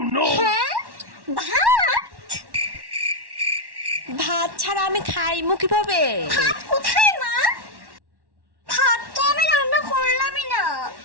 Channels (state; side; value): late; left; 1.1 ms